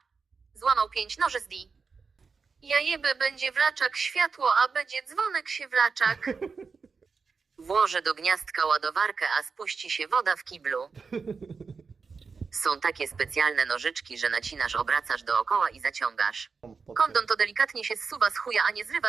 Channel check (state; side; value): quieter; left; 5.0 dB